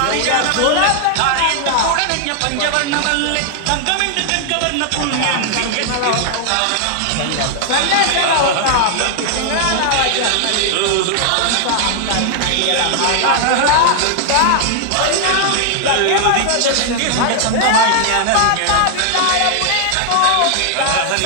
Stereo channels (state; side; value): different; both; correlation 0.00